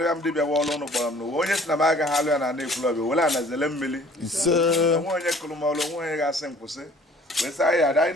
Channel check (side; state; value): both; normal; correlation 0.52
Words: ya m dibịa wa ọlụ ụnụ kpọrọ m n'ụwa onye si na m agaghị alụ ya na na-ekwulọbịa were anazele mmiri ise onwe onye kụrụ m ọlụ onwe onye ga-asị m kwụsị wee sị anyị adị anyị